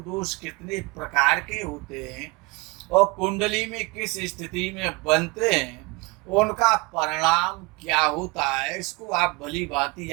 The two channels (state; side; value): quieter; left; 25.7 dB